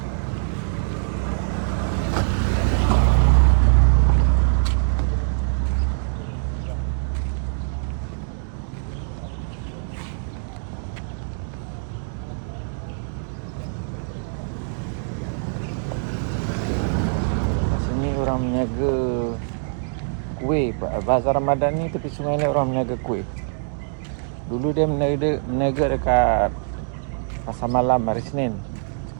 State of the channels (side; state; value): left; silent; digital silence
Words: orang meniaga kuih. Bazar Ramadan ni tepi sungai ni orang meniaga kuih. Dulu dia meniaga dekat pasar malam hari Senin.